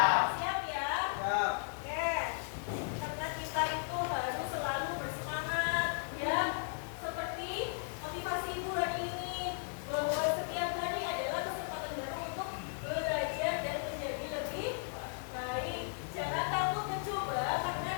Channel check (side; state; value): right; silent; digital silence